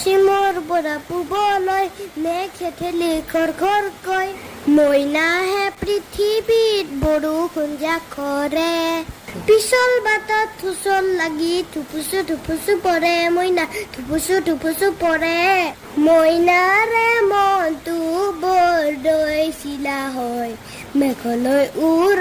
পৰা পূবলৈ মেঘে ঠেলি খৰকৈ, মইনাহে পৃথিৱীত বৰষুণ জাকৰে। পিছল বাটত হুচল লাগি থুপুচু পৰে, মইনা থুপুচু পৰে। মইনাৰে মনটো বৰদৈ চিলা হয়, মেঘলৈ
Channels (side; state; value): both; identical; correlation 1.00